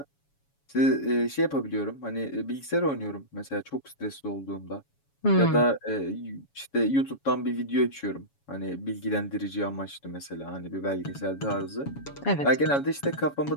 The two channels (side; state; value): right; late; 7.1 ms